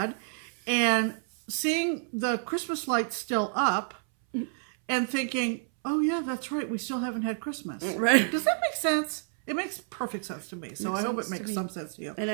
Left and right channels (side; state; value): left; silent; 58 dB below the other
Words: and seeing the Christmas lights still up and thinking, oh yeah, that's right, we still haven't had Christmas. Right. Does that make sense? It makes perfect sense to me. So I hope it makes some sense to you. And